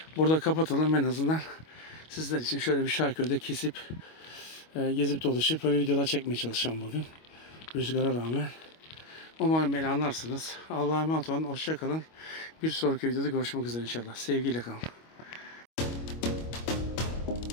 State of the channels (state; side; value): late; right; 25 ms